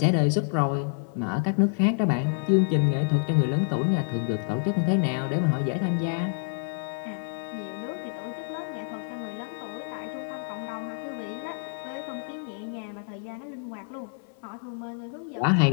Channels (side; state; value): right; silent; 59 dB below the other